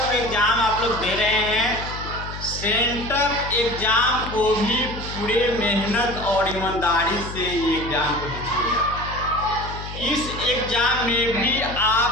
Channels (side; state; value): left; noise; hum, 10 dB below the sound